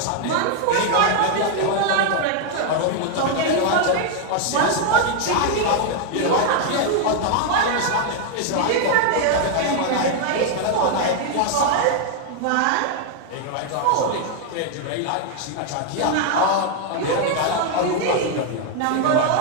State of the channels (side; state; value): both; different; correlation 0.00